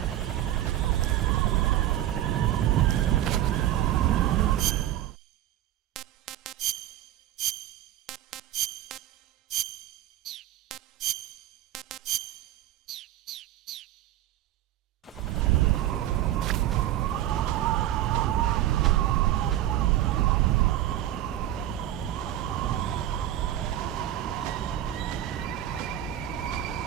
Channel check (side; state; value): left; quieter; 13.0 dB